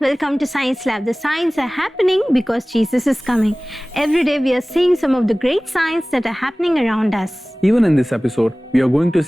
Welcome to Science Lab. The signs are happening because Jesus is coming. Every day we are seeing some of the great signs that are happening around us. Even in this episode, we are going to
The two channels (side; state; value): both; normal; correlation 0.98